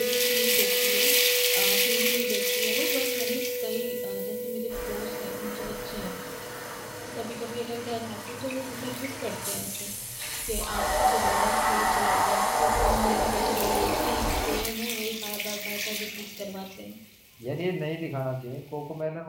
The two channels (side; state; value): both; identical; correlation 1.00